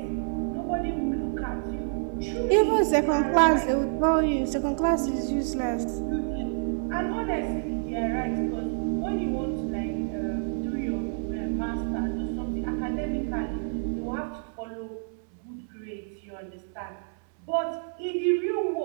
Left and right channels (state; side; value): silent; left; digital silence